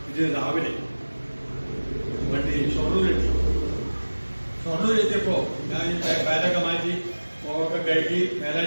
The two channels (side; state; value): both; inverted; correlation -1.00